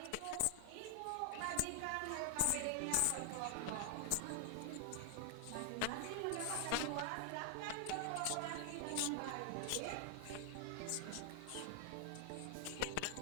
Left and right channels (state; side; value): different; both; correlation 0.00